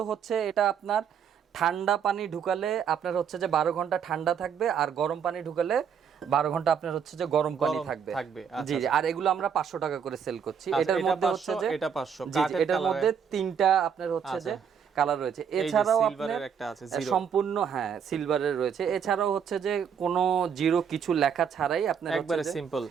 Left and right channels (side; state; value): left; quieter; 7.5 dB